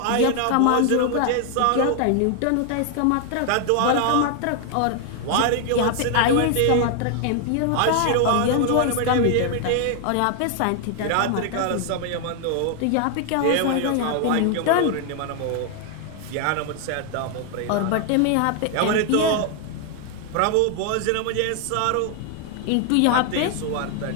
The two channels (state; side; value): different; both; correlation 0.00